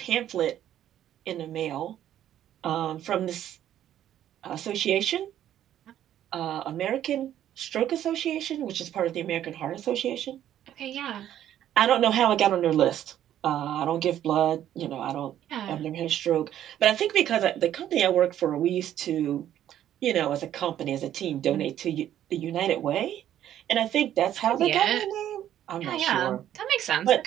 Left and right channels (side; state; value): left; quieter; 11.4 dB